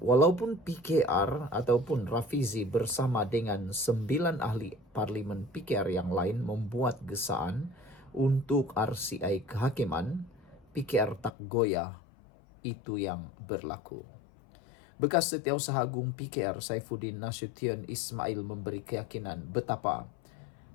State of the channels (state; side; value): drops out; right; at 11.3 s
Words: walaupun PKR ataupun Rafizi bersama dengan 9 ahli parlimen PKR yang lain membuat gesaan untuk RCI kehakiman, PKR tak goyah, itu yang berlaku. Bekas Setiausaha Agung PKR Saifuddin Nasution Ismail memberi keyakinan betapa